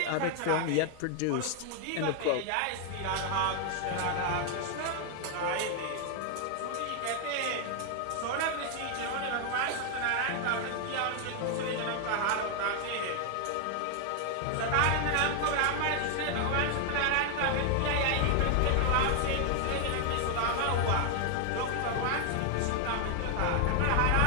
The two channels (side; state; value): both; different; correlation 0.00